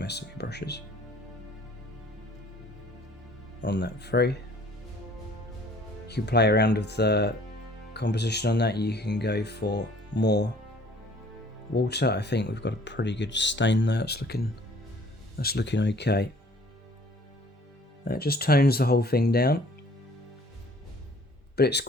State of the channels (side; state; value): both; normal; correlation 0.55